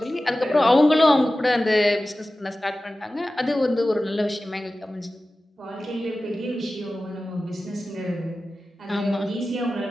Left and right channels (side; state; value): both; normal; correlation 0.95